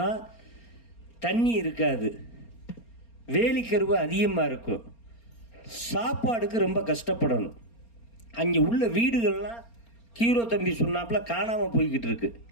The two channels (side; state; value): right; late; 4.3 ms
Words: தண்ணி இருக்காது, வேலிக்கருவு அதிகமாக இருக்கும், சாப்பாடுக்கு ரொம்ப கஷ்டப்படணும். அங்கே உள்ள வீடுகள்லாம் ஹீரோ தம்பி சொன்னாப்புல காணாமல் போய்கிட்டு இருக்கு,